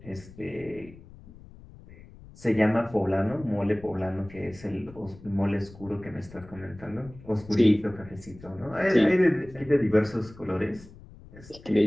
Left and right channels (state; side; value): noise; left; rumble, 20 dB below the sound